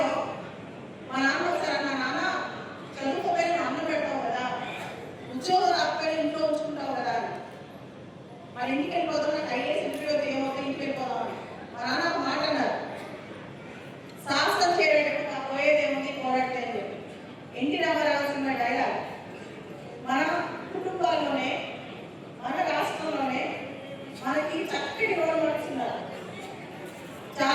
మా నాన్న ఒకసారి అన్నా, నాన్న చదువుకోపోయి నువ్వు అన్నం పెడతావు కదా, ఉద్యోగం రాకపోయి ఇంట్లో ఉంచుకుంటావు కదా, మరి ఇంటికి వెళ్ళిపోతాం, నాకు ఐఏఎస్ ఇంటర్వ్యూ ఏమవుతుంది, ఇంటికి వెళ్ళిపోదామని. మా నాన్న ఒక మాట అన్నారు, సాహసం చేయడానికి నాకు పోయేదేముంది, పోరాడితే అని చెప్పి. NT Rama Rao cinema dialogue. మన కుటుంబాల్లోనే, మన రాష్ట్రంలోనే మనకి చక్కటి రోల్ మోడల్స్ ఉన్నారు.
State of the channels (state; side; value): identical; both; correlation 1.00